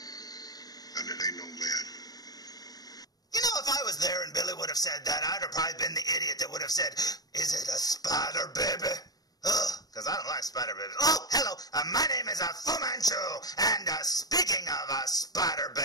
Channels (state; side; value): late; right; 0.18 ms